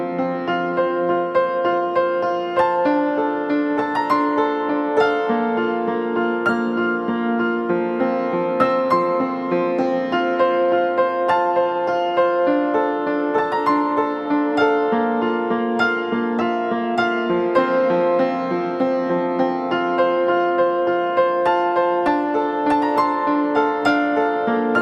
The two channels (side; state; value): both; identical; correlation 1.00